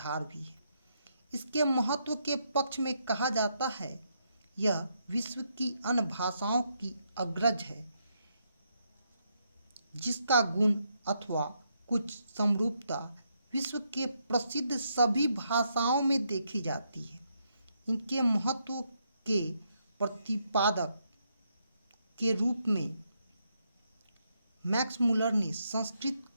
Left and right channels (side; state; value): both; inverted; correlation -0.78